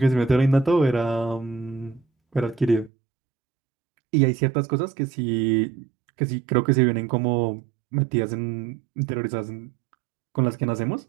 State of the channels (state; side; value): drops out; left; at 2.9 s